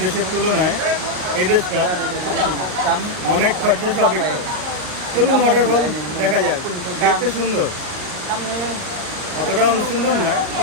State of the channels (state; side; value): late; left; 38 ms